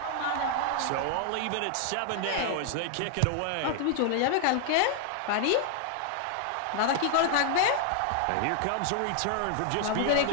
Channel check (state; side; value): different; both; correlation 0.00